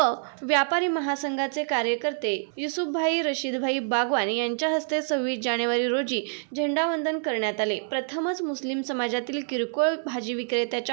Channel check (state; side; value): silent; left; 60 dB below the other